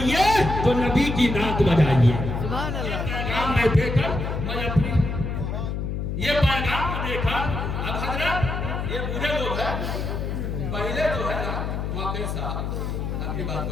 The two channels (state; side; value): noise; left; hum, 3 dB below the sound